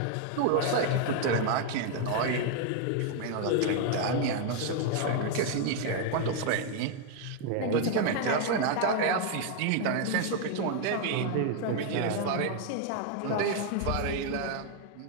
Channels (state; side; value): different; both; correlation 0.00